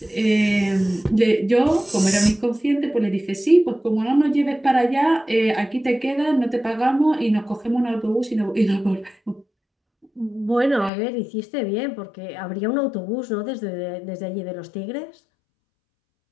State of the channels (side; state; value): right; drops out; at 10.9 s